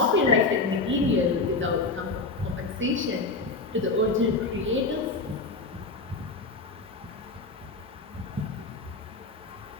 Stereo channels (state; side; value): quieter; right; 3.6 dB